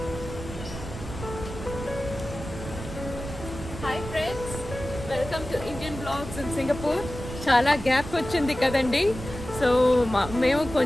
Hi friends, welcome to Indian Vlogs in Singapore. చాలా gap వచ్చింది కదండి. So మేము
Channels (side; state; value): right; noise; rumble, 10 dB below the sound